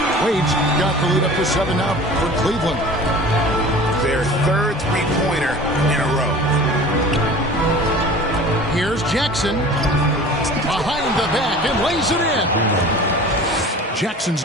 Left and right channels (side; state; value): both; normal; correlation 0.41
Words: Wade's got the lead up to 7 now for Cleveland. Their third three-pointer in a row. Here's Jackson. Behind the back and lays it in.